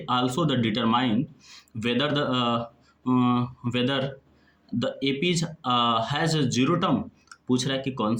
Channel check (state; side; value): identical; both; correlation 1.00